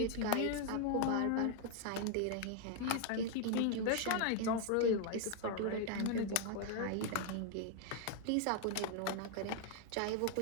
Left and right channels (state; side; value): different; both; correlation 0.00